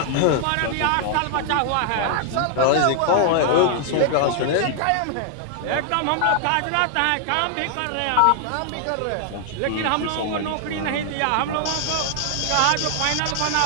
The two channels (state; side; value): different; both; correlation 0.00